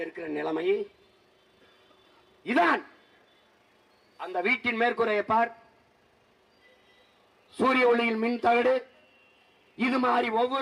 இருக்கிற நிலைமை. இதான் அந்த வீட்டின் மேற்கூரையை பார், சூரிய ஒளியில் மின் தகடு. இது மாதிரி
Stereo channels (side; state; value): both; identical; correlation 1.00